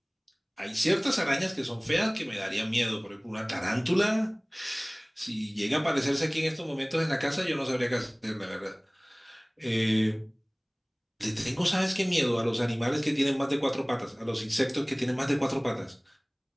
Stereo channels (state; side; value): identical; both; correlation 1.00